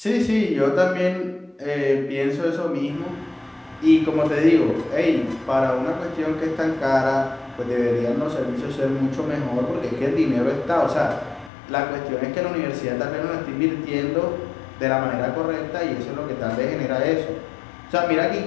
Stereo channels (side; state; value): right; drops out; at 11.5 s